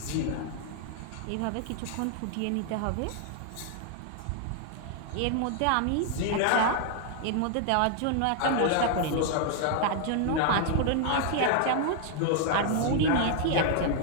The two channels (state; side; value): different; both; correlation 0.00